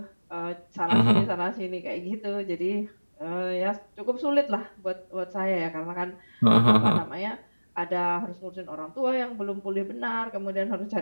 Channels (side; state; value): both; inverted; correlation -1.00